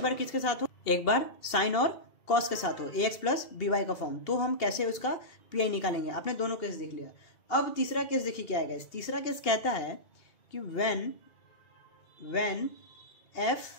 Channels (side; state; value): right; late; 2.7 ms